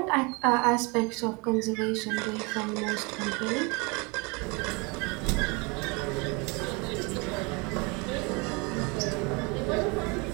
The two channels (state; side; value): quieter; left; 29.2 dB